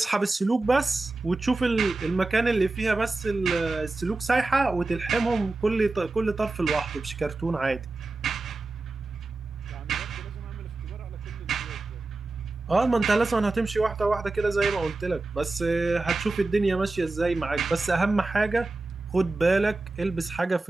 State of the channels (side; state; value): left; quieter; 3.3 dB